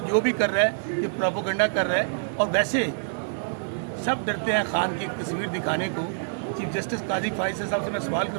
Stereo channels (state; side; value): silent; left; digital silence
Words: جو بھی کر رہا ہے یہ پروپیگنڈا کر رہا ہے, اور ویسے سب ڈرتے ہیں خان کی ایک تصویر دکھانے کو. چیف جسٹس قاضی فائز صاحب سے میں سوال